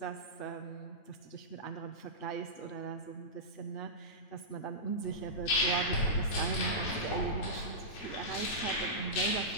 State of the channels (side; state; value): right; late; 8.9 ms